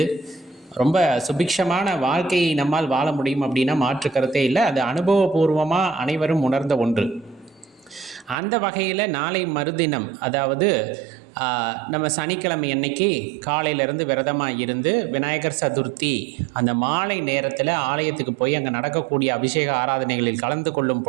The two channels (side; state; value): left; drops out; at 8.3 s